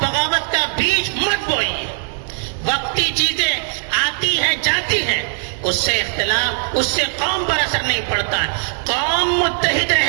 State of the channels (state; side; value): silent; left; 64 dB below the other